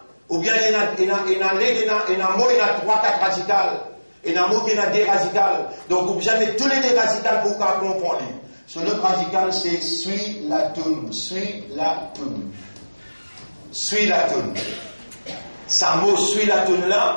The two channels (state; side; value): inverted; both; correlation -1.00